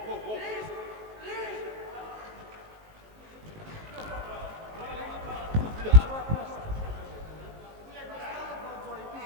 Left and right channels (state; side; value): late; left; 19 ms